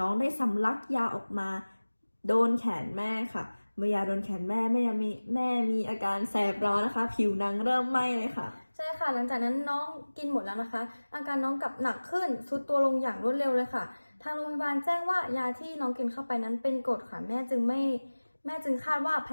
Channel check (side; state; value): both; inverted; correlation -1.00